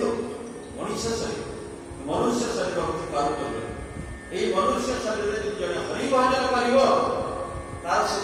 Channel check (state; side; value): identical; both; correlation 1.00